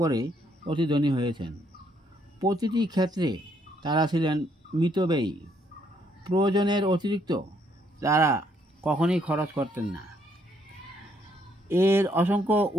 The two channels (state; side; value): normal; both; correlation 0.71